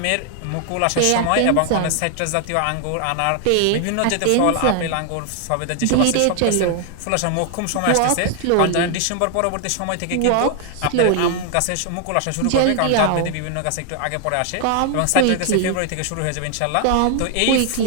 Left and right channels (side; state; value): both; different; correlation 0.00